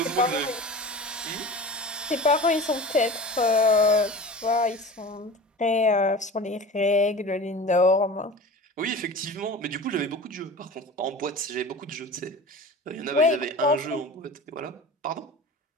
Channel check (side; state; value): both; normal; correlation 0.36